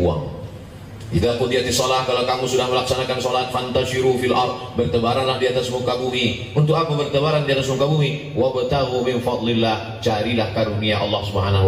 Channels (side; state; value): both; identical; correlation 1.00